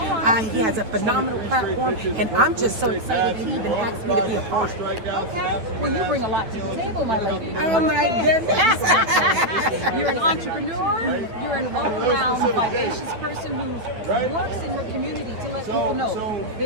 He has a phenomenal platform, and I'm just so excited that he even asked me to be a part. Okay. Well, you bring a lot to the table, my lady. Oh my goodness. You're an entrepreneur. You're an all-around vivacious person who works in her community to let people know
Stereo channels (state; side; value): late; left; 9.2 ms